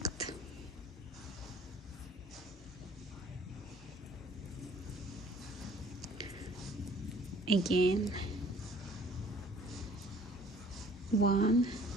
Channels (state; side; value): normal; both; correlation 0.54